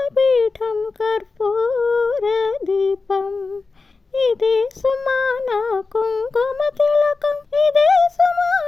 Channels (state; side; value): quieter; right; 4.1 dB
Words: కర్పూర దీపం. ఇదే సుమాన కుంకుమ తిలకం, ఇదే